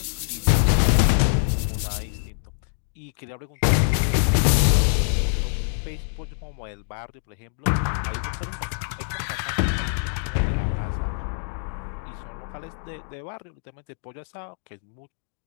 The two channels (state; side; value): silent; right; digital silence